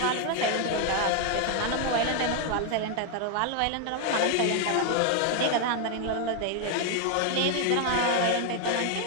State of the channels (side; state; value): both; different; correlation 0.00